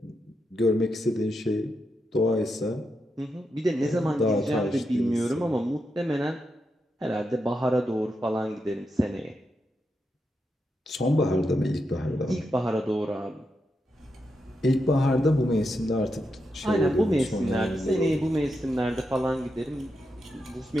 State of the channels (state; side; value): normal; both; correlation 0.85